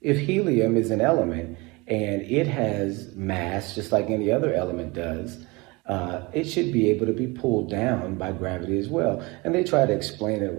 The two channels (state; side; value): quieter; left; 25.1 dB